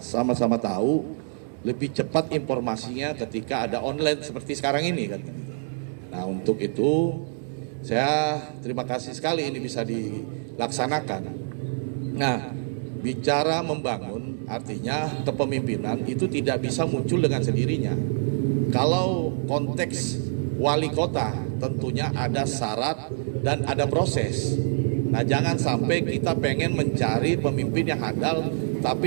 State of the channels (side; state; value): left; silent; digital silence